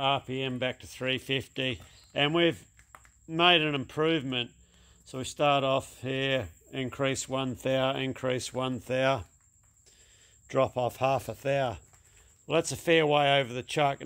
RPM back to 350, and we've made an improvement. So we start off here, increase 1 thou, increase 1 thou, drop off half a thou. Well, that's a fair way over the chuck,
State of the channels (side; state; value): both; identical; correlation 1.00